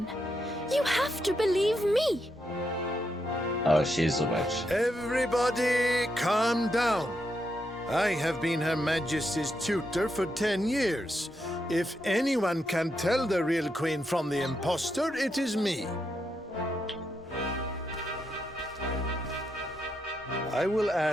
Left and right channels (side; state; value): both; normal; correlation 0.82